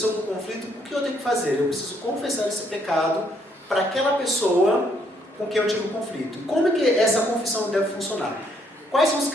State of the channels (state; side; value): normal; both; correlation 0.70